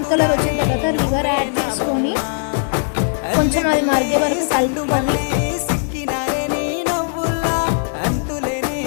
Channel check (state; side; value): silent; right; digital silence